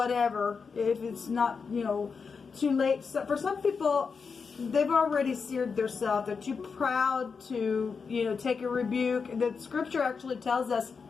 if it's not, too late. So for some people, they've already seared themselves. They're too proud to, take a rebuke. The scripture actually tells us,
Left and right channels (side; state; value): right; quieter; 5.4 dB